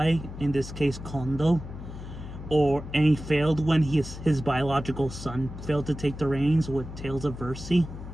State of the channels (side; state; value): left; noise; hum, 11 dB below the sound